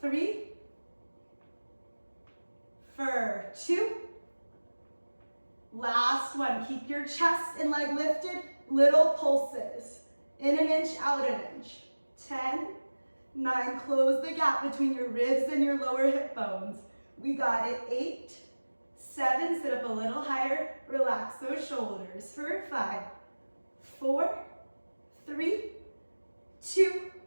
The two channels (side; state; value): both; inverted; correlation -1.00